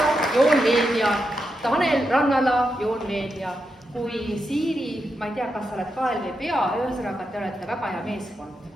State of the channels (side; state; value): both; normal; correlation 0.85